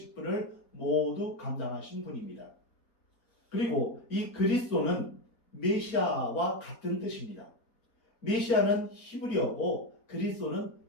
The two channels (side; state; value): right; late; 4.3 ms